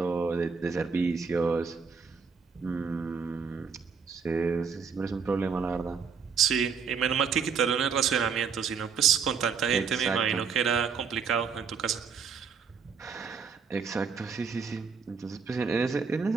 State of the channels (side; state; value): left; quieter; 5.9 dB